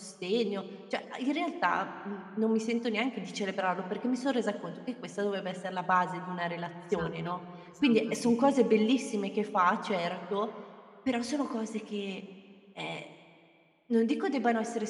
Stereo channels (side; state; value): both; identical; correlation 1.00